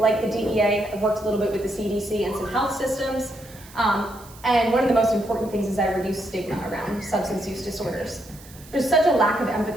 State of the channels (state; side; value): noise; right; hiss, 21 dB below the sound